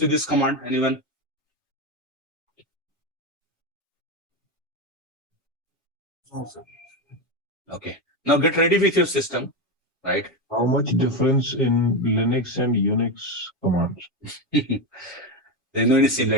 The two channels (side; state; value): right; late; 1.4 ms